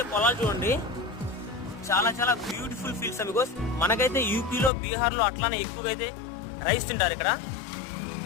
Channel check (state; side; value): drops out; right; at 4.7 s